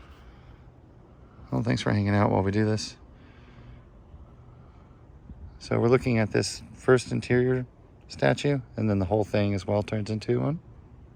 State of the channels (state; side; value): identical; both; correlation 1.00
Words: Well, thanks for hanging out while we do this. So we're looking at this first interior statue, and then the whole thing as well turns into one.